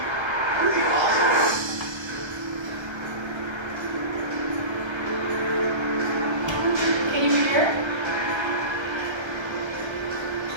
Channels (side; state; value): left; late; 1.3 ms